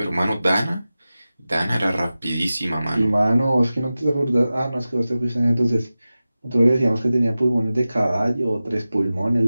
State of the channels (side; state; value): both; inverted; correlation -0.95